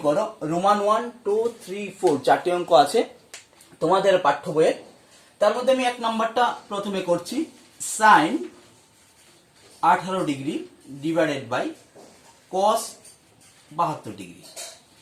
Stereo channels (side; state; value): both; identical; correlation 1.00